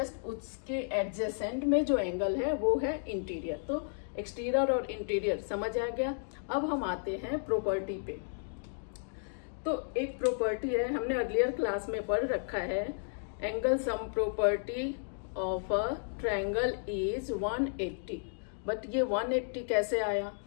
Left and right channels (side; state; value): right; silent; digital silence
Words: उसके एडजेसेंट में जो एंगल है वो है इंटीरियर। तो एक्सटीरियर और इंटीरियर समझ आ गया। अब हम आते हैं प्रॉपर्टी पे। तो एक प्रॉपर्टी है, हमने अर्लियर क्लास में पढ़ रखा है, angle sum property of a triangle is 180। But ये 180 कैसे आया?